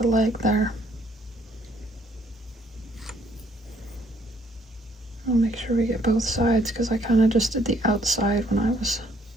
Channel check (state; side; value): normal; both; correlation 0.65